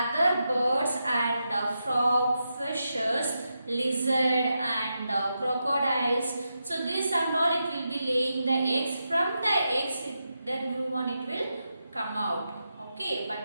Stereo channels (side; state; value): both; inverted; correlation -0.86